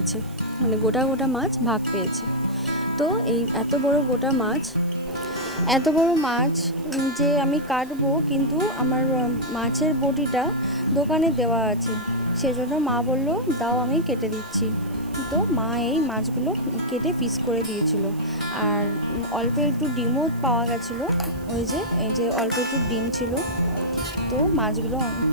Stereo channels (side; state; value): right; noise; hiss, 24 dB below the sound